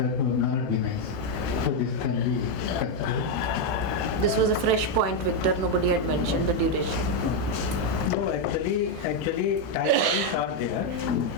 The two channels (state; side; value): normal; both; correlation 0.02